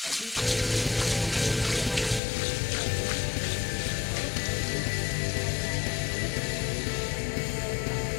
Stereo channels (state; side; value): drops out; right; at 2.2 s